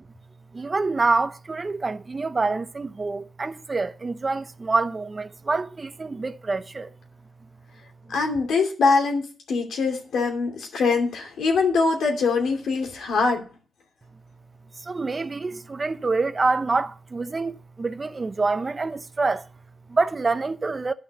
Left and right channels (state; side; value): normal; both; correlation 0.85